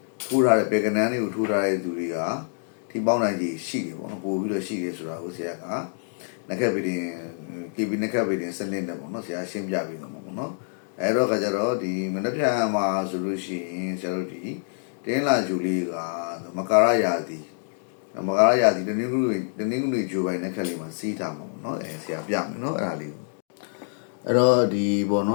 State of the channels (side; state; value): right; silent; digital silence